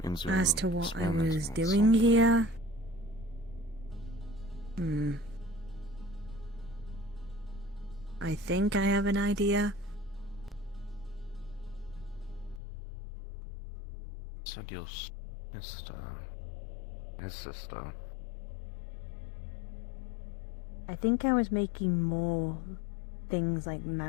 Means you're As to what I experimenting was on doing something. here, I think I have an idea. Said your sister. His sister. I think I was making more things like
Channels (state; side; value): drops out; right; at 12.6 s